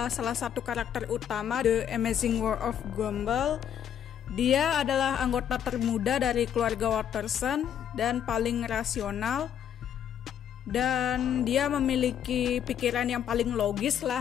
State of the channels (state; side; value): quieter; right; 9.2 dB